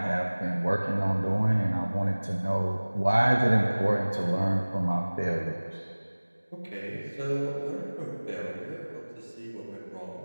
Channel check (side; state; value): both; inverted; correlation -1.00